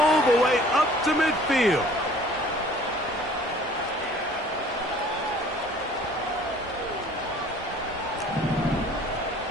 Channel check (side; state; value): both; normal; correlation 0.52